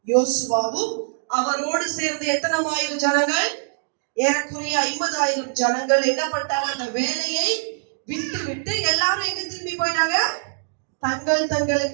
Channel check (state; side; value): silent; left; digital silence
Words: யோசுவாவும் அவரோடு சேர்ந்து எத்தனை ஆயிரம் ஜனங்கள், ஏறக்குறைய 50,000 ஜனங்கள் என்ன பண்ணிட்டாங்க, அந்த வேலையை விட்டு விட்டு எல்லாரும் எங்க திரும்பி போயிட்டாங்க, தங்கள்